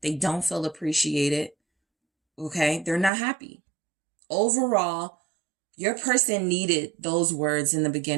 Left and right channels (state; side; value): drops out; left; at 3.1 s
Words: They don't feel appreciated. Okay. They're not happy. Overall, your person needed those words in the